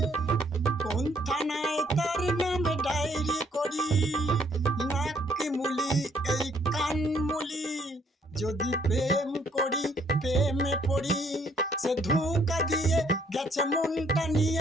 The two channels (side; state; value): both; normal; correlation 0.66